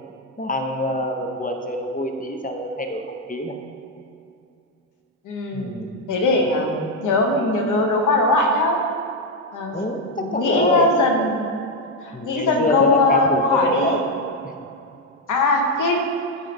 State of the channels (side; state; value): both; normal; correlation 0.03